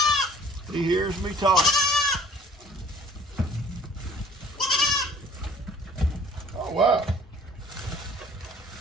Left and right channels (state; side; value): normal; both; correlation 0.53